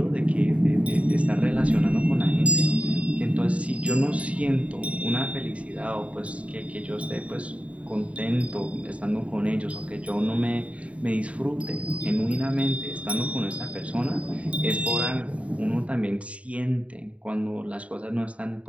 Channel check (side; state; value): left; late; 0.065 ms